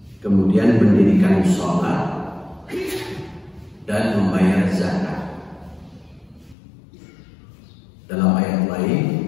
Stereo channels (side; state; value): right; drops out; at 6.6 s